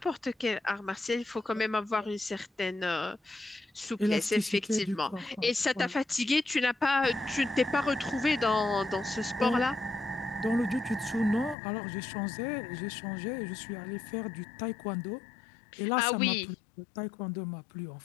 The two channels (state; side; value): drops out; right; at 11.6 s